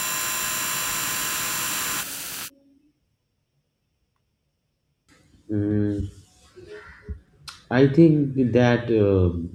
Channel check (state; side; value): identical; both; correlation 1.00